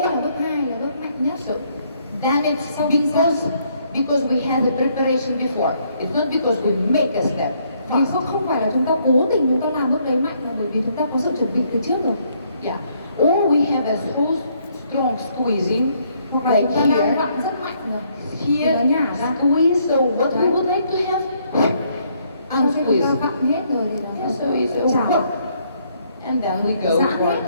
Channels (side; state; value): both; inverted; correlation -0.70